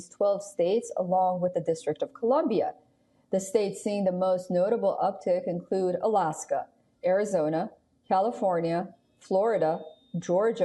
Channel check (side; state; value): both; identical; correlation 1.00